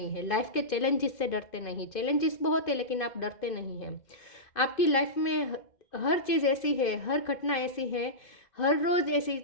हैं। लाइफ के चैलेंजेस से डरते नहीं। चैलेंजेस बहुत है लेकिन आप डरते नहीं हैं। आपकी लाइफ में हर चीज़ ऐसी है, हर घटना ऐसी है, हर रोज़ ऐसी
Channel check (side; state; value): right; late; 2.5 ms